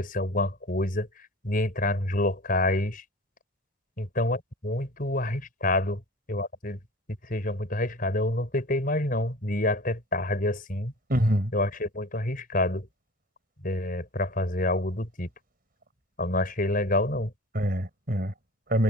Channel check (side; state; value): both; normal; correlation 0.38